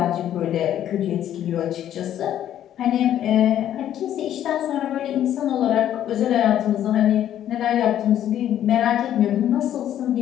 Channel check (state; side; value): quieter; right; 11.1 dB